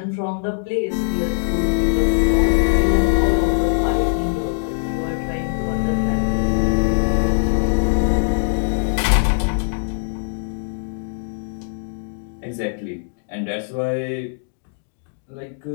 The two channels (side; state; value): right; silent; digital silence